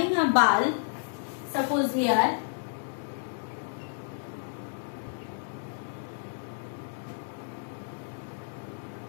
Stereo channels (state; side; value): silent; right; digital silence